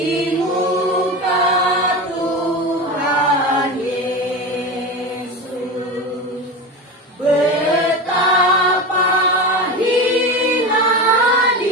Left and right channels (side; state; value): both; normal; correlation 0.24